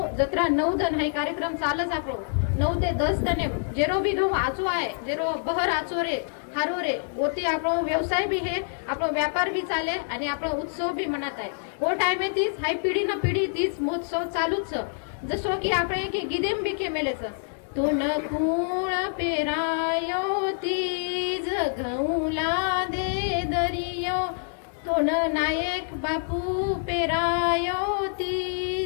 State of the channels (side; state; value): right; silent; digital silence